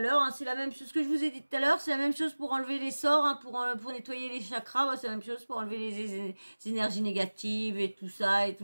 l'heure. Hein. C'est la même chose que je vous ai dit tout à l'heure. C'est la même chose pour enlever les sorts, hein, pour nettoyer les chakras. C'est la même chose pour enlever les énergies négatives et tout ça et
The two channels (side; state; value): both; inverted; correlation -1.00